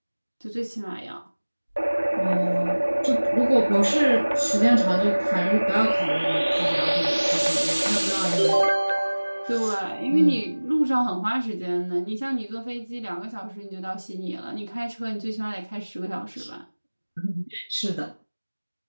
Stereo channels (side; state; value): both; inverted; correlation -1.00